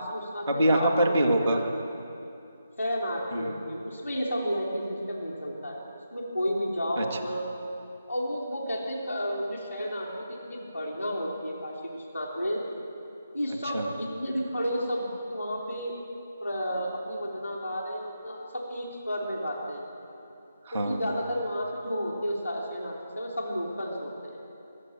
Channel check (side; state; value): both; inverted; correlation -0.85